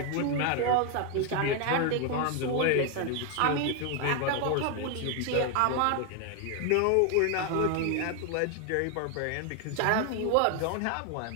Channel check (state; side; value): different; both; correlation 0.01